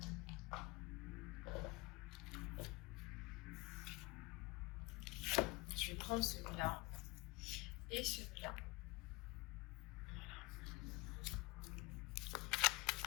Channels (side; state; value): right; quieter; 23.7 dB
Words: Je vais prendre celui-là et celui-là. Voilà.